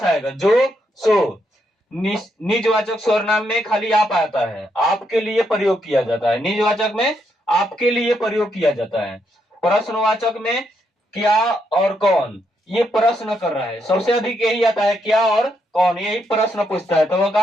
जो, सो। निजवाचक सर्वनाम में खाली आप आता है, आपके लिए प्रयोग किया जाता है। निजवाचक में आपके लिए प्रयोग किया जाता है। प्रश्नवाचक में क्या और कौन, ये प्रश्न कर रहा है, सबसे अधिक यही आता है, क्या और कौन, यही प्रश्न पूछता है तो वो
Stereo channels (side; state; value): both; normal; correlation 0.78